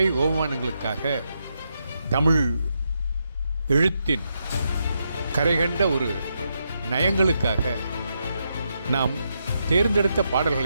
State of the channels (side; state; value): both; inverted; correlation -0.82